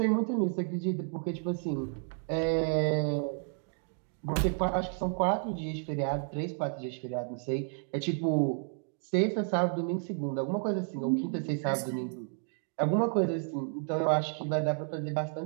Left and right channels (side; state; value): left; silent; 57 dB below the other